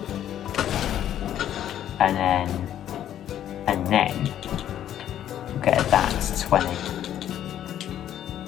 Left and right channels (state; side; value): quieter; right; 11.0 dB